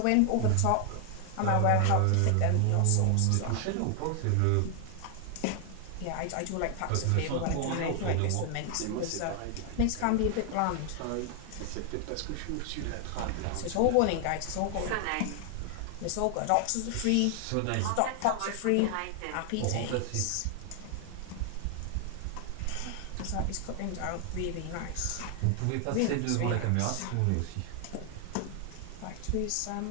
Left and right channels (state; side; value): different; both; correlation 0.00